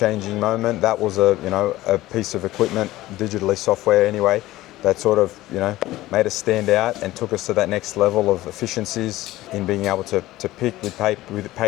moment. That was a piece of equipment, digitally software anyway, that sort of made us stand out and took us to that next level of efficiencies in being able to pick with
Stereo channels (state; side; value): quieter; right; 16.8 dB